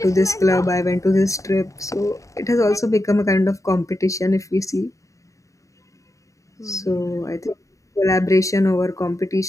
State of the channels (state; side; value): late; right; 0.16 ms